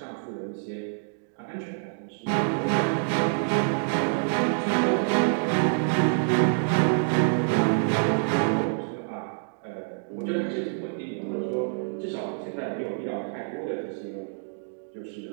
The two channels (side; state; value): left; silent; digital silence